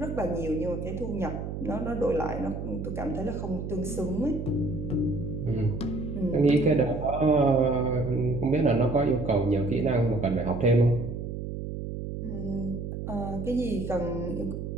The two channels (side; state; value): right; noise; hum, 6 dB below the sound